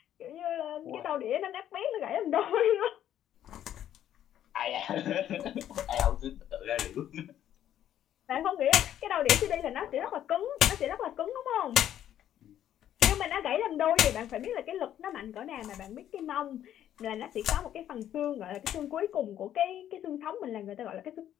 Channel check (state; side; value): quieter; right; 11.1 dB